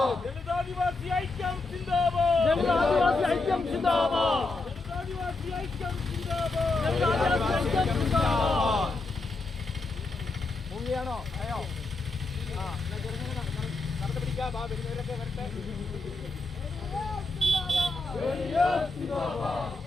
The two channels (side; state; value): right; quieter; 3.3 dB